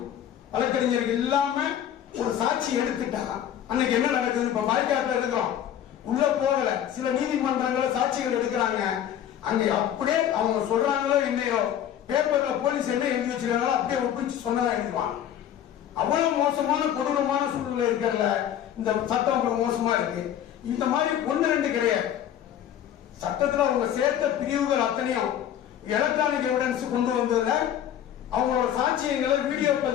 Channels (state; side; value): quieter; right; 10.4 dB